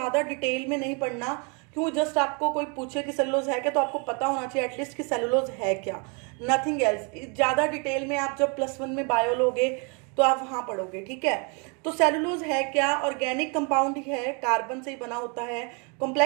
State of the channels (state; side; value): quieter; left; 34.4 dB